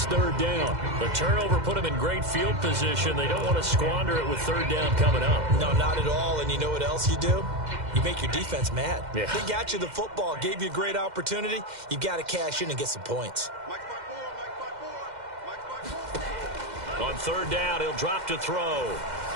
3rd down. The turnover put him in great field position. They don't want to squander it with 3rd down coming up. No, not at all. And you know what else you do? You make your defense mad. Yeah. They got you the football, gave you a great opportunity. You got to cash in and get some points. On 3rd down, he'll drop to throw.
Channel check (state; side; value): late; left; 2.1 ms